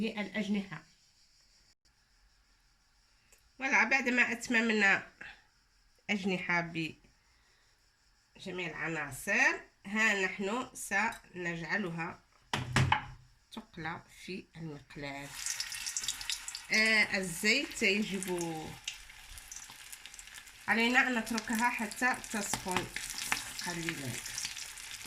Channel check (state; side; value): identical; both; correlation 1.00